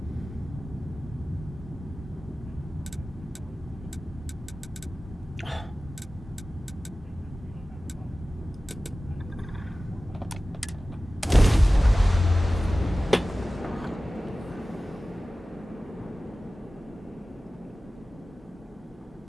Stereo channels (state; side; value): normal; both; correlation 0.96